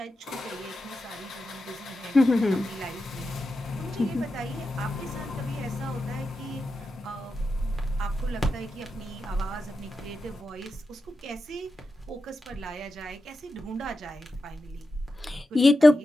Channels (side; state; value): both; normal; correlation 0.90